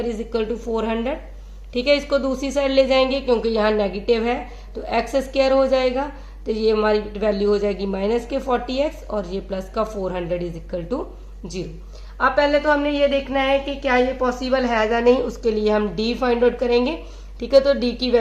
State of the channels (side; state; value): both; identical; correlation 1.00